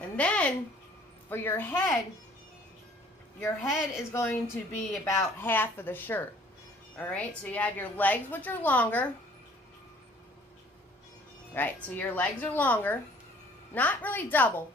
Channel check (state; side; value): normal; both; correlation 0.55